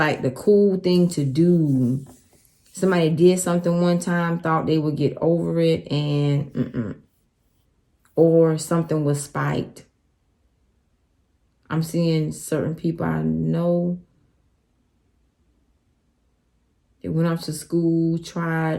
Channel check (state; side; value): identical; both; correlation 1.00